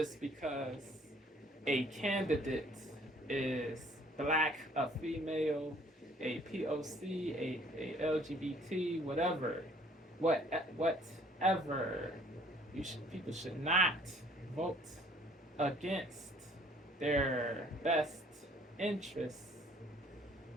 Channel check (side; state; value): both; normal; correlation 0.58